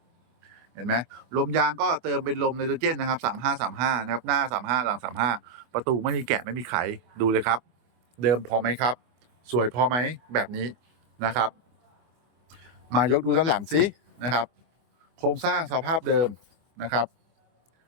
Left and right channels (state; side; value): late; left; 25 ms